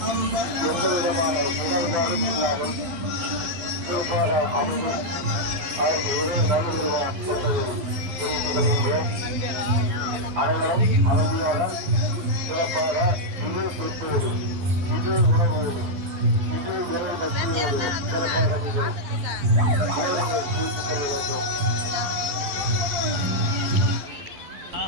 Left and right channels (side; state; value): left; late; 11 ms